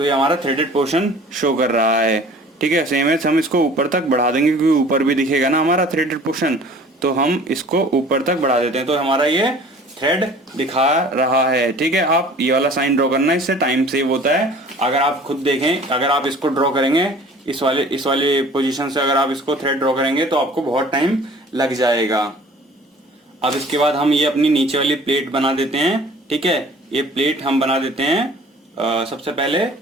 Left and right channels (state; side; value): normal; both; correlation 0.48